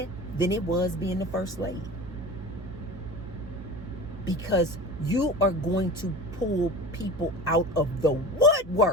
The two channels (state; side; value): normal; both; correlation 0.34